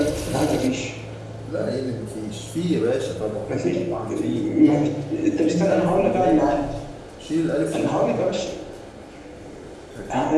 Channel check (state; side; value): identical; both; correlation 1.00